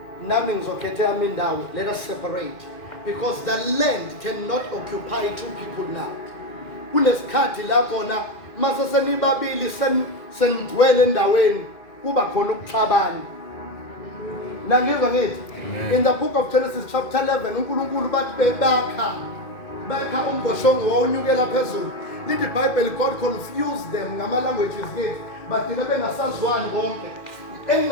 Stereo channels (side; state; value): right; late; 2.1 ms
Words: Nami ngizokhetha yami indawo. Let us separate because the land cannot occupy two people now. Kunesikhathi lapho na mase senibabili senigcwele endaweni kuba khona ukuxabana. Ngizwa ngithi in the book of Genesis chapter 11 uNkulunkulu bathi bekha umboshongo wawunyukela phezulu. Lithi iBhayibheli God confused them ngama languages ngithi bathi bengasazwani bonke.